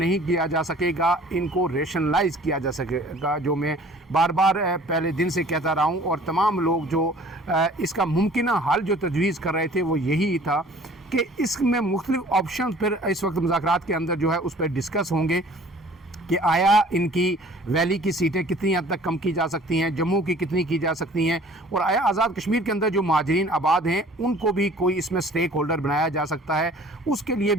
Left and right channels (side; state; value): both; normal; correlation 0.50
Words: کیا جا سکے گا، ان کو ریشنلائز کیا جا سکے گا، جو میں بار بار پہلے دن سے کہتا رہا ہوں، اور تمام لوگ جو اس کا ممکنہ حل جو تجویز کر رہے تھے وہ یہی تھا کہ اس میں مختلف آپشن پھر اس وقت مذاکرات کے اندر جو ہے اس پہ ڈسکس ہوں گے کہ آیا ان کی ویلی کی سیٹیں کتنی حد تک کم کی جا سکتی ہیں، جموں کی کتنی کی جا سکتی ہیں، اور آیا آزاد کشمیر کے اندر جو مہاجرین آباد ہیں ان کو بھی کوئی اس میں سٹیک ہولڈر بنایا جا سکتا ہے، اس کے لیے